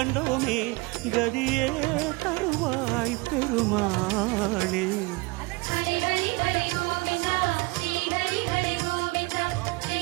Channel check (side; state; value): left; quieter; 25.2 dB